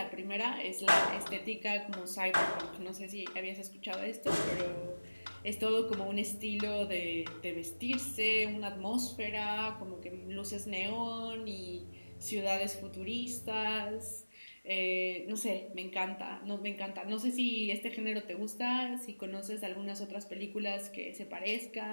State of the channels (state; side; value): inverted; both; correlation -1.00